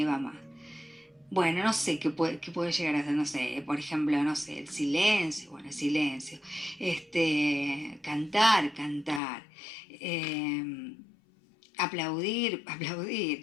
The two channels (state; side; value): drops out; right; at 9.2 s